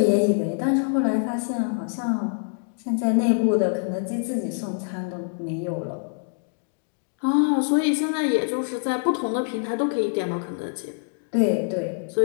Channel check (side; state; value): right; silent; digital silence